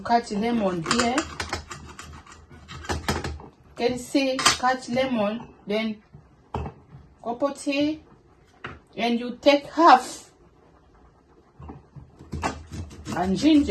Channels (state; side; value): identical; both; correlation 1.00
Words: lemon here. Can you see? Cut lemon, then copote, and you take half. And